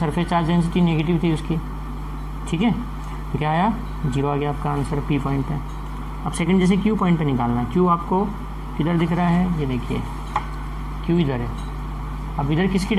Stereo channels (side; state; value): both; identical; correlation 1.00